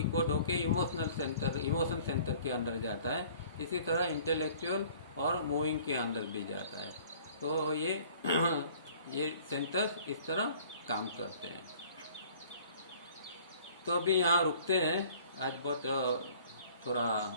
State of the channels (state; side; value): inverted; both; correlation -0.53